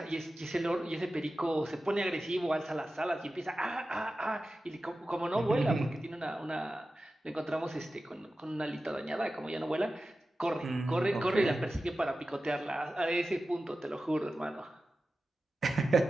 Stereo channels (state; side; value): normal; both; correlation 0.94